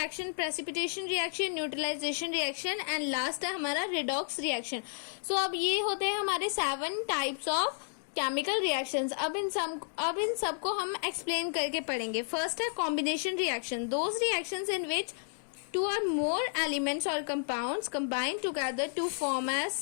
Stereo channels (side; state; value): right; silent; digital silence